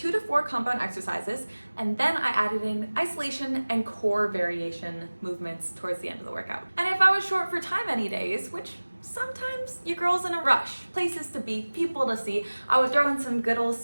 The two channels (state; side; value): inverted; both; correlation -1.00